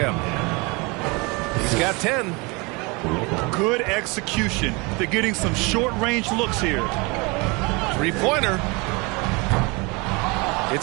He's got 10. Good execution. They're getting some short-range looks here. Three-pointer.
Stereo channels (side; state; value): left; quieter; 27.5 dB